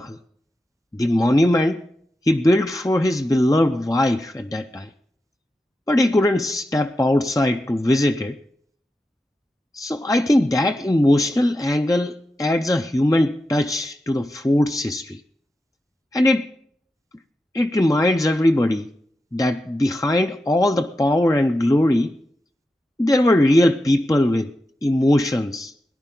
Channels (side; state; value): both; normal; correlation 0.89